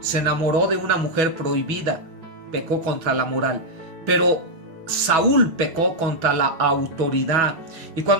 se enamoró de una mujer prohibida, pecó contra la moral, pero Saúl pecó contra la autoridad. Y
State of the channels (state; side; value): late; left; 6.2 ms